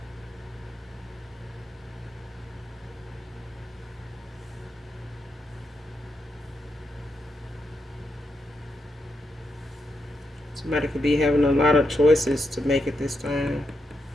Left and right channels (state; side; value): normal; both; correlation 0.83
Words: Somebody could be having a lot of choices to make at this time.